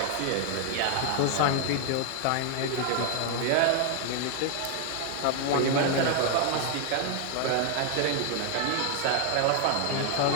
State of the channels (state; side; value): different; both; correlation 0.00